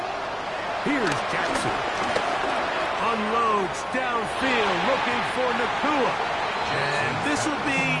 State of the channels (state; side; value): identical; both; correlation 1.00